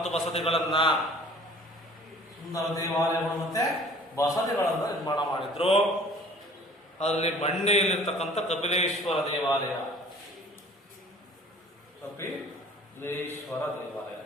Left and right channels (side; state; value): both; normal; correlation 0.49